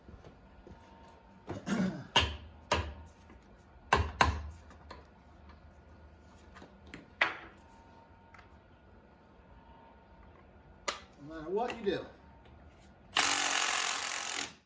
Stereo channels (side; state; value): both; identical; correlation 1.00